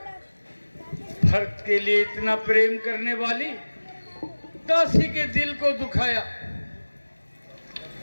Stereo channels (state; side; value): inverted; both; correlation -1.00